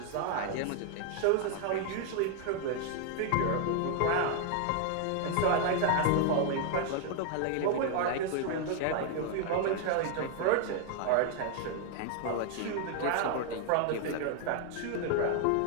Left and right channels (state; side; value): different; both; correlation 0.00